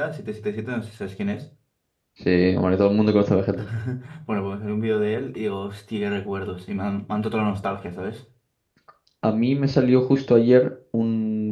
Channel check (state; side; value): identical; both; correlation 1.00